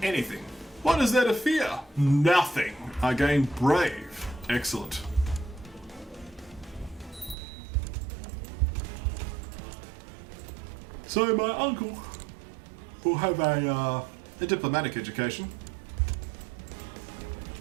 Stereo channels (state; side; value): drops out; left; at 7.4 s